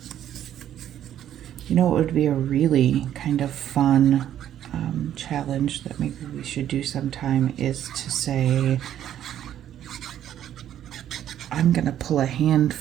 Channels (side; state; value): left; quieter; 11.0 dB